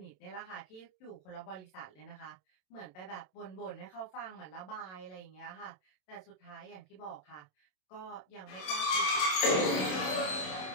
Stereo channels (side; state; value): right; late; 27 ms